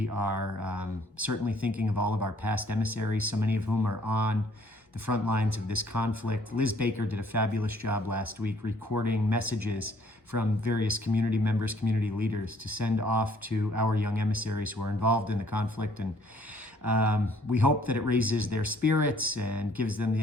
are certainly thinking of all of our past emissaries, so many of whom are on the front lines of this conflict. Liz Baker did a fabulous job last week recording messages from various community members, community leaders to send off to our young emissaries who are involved in the conflict. And we hope that it raises their spirits and gives them the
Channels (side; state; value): both; normal; correlation 0.61